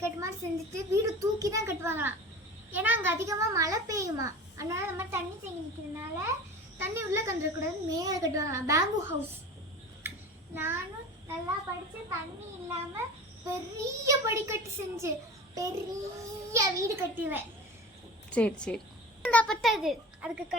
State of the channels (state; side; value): normal; both; correlation 0.36